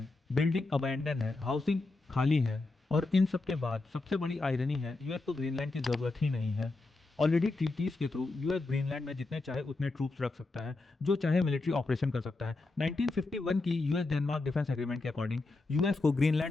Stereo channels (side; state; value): right; quieter; 3.3 dB